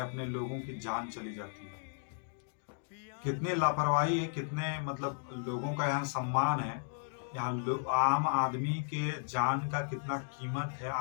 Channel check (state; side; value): silent; right; digital silence